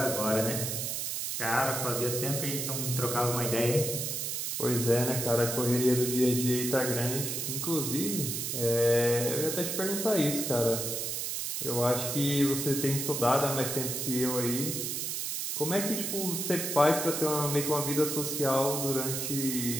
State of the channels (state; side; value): noise; right; hiss, 2 dB below the sound